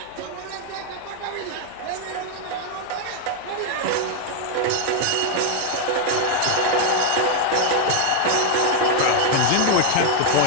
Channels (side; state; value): both; different; correlation 0.01